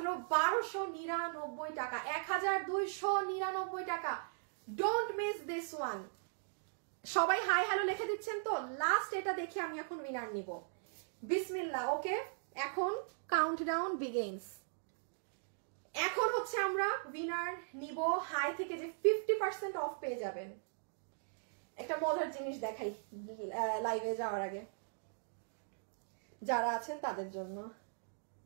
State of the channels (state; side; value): silent; left; digital silence